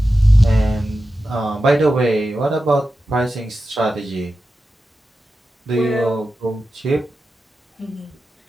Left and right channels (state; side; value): normal; both; correlation 0.92